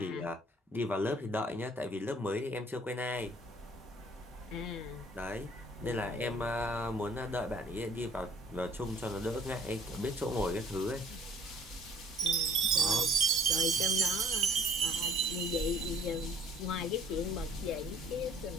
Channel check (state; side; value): normal; both; correlation 0.57